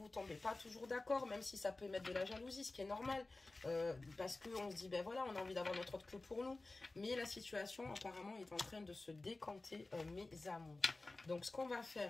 ne tombez pas toujours d'accord, même si ça peut mettre de la jalousie, ce qui est normal, parce qu'on se dit, ben voilà, on a envie d'avoir notre autre que pour nous, mais la situation apparemment est en train de se décanter, mes amours. Donc ce qu'on va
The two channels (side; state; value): right; quieter; 3.2 dB